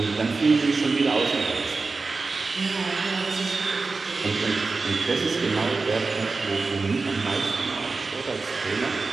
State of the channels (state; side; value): quieter; left; 4.0 dB